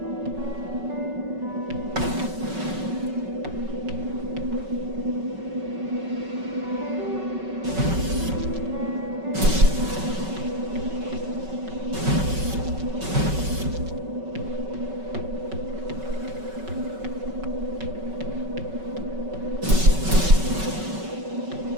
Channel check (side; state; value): left; late; 5.3 ms